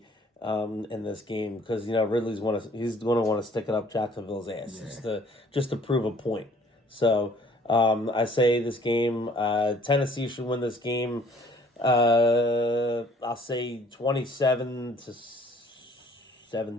in this game because Ridley's he's going to want to stick it up Jacksonville's ass just to prove a point. So I say this game, Tennessee should win this game. I'll say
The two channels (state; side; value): normal; both; correlation 0.57